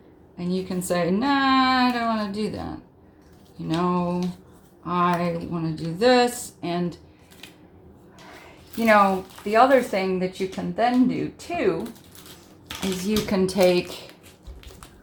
and you can say, nah, I don't want to do that. You know, I want to do this. And, you know, the other thing that you can then do too is you can take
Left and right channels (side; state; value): both; identical; correlation 1.00